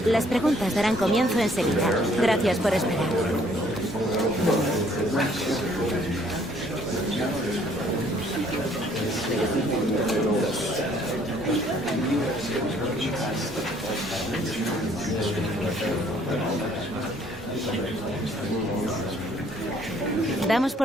Las preguntas darán comienzo enseguida. Gracias por esperar. Damos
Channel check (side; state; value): both; normal; correlation 0.62